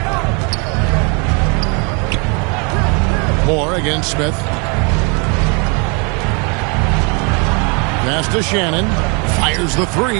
Moore against Smith. Pass to Shannon. Fires the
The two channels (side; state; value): left; quieter; 33.1 dB